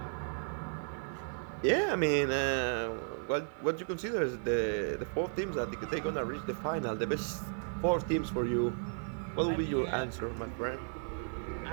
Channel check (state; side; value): silent; left; 55 dB below the other